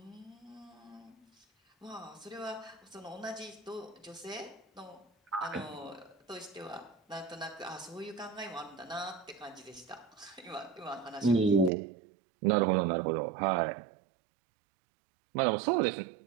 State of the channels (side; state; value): left; drops out; at 11.7 s